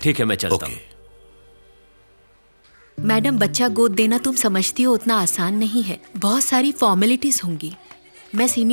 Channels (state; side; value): inverted; both; correlation -1.00